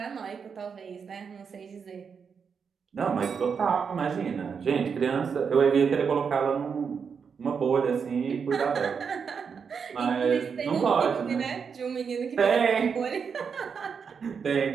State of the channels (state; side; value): quieter; left; 6.2 dB